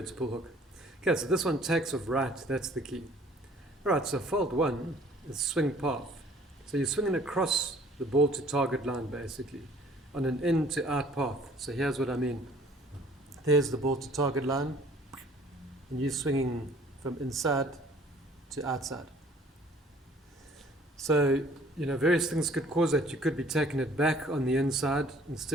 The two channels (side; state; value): both; normal; correlation 0.55